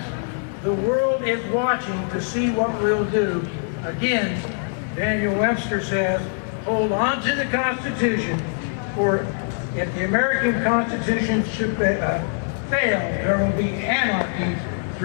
The world is watching to see what we'll do. Again, Daniel Webster says, hold on to the Constitution, for if the American Constitution should fail, there will be anarchy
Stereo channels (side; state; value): right; silent; 63 dB below the other